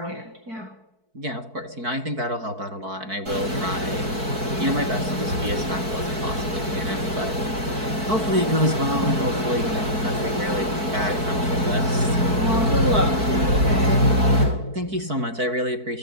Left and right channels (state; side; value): late; left; 4.6 ms